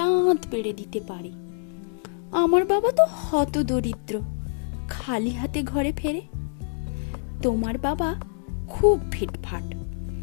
পেড়ে দিতে পারে। আমার বাবা তো হত দরিদ্র, খালি হাতে ঘরে ফেরে। তোমার বাবা খুব ফিটফাট,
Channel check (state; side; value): silent; right; digital silence